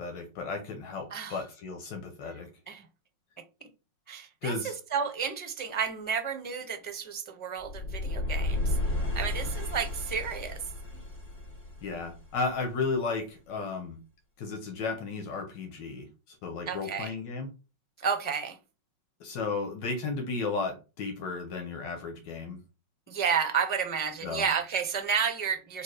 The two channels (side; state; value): right; late; 5.4 ms